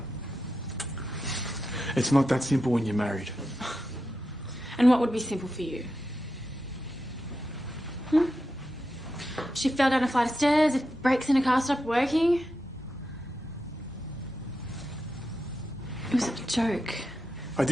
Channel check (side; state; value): both; normal; correlation 0.88